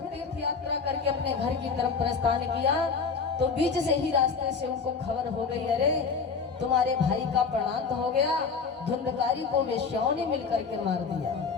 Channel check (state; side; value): quieter; right; 5.3 dB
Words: यात्रा करके अपने घर की तरफ प्रस्थान किया। तो बीच से ही रास्ते से उनको खबर हो गई, अरे तुम्हारे भाई का प्राणांत हो गया, धुंधकारी को वेश्याओं ने मिलकर के मार दिया।